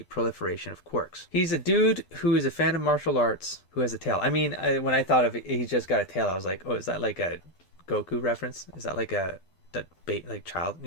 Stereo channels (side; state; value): right; late; 11 ms